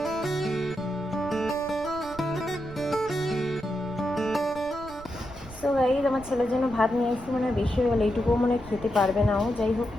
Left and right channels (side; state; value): right; noise; rumble, 17 dB below the sound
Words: সো গাইস আমার ছেলের জন্য ভাত নিয়ে এসেছি, মানে বেশি হয়ে গেলে এইটুকুও মনে খেতে পারবে না ও, যাই হোক